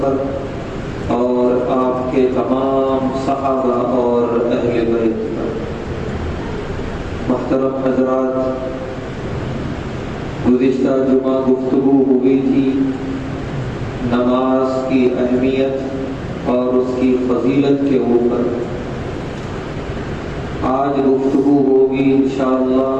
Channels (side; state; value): both; identical; correlation 1.00